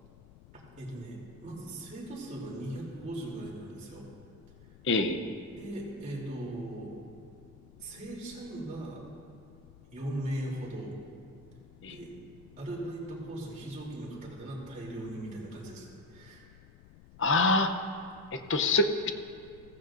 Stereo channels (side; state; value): left; noise; rumble, 21 dB below the sound